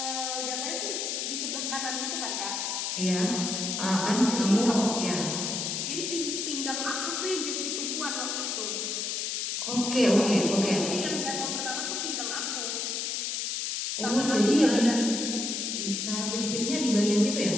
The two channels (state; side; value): noise; left; hiss, 2 dB below the sound